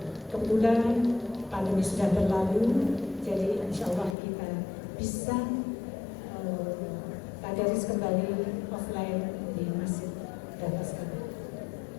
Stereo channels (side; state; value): right; drops out; at 4.2 s